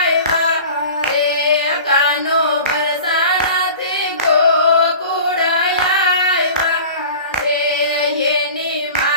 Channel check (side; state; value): both; inverted; correlation -0.40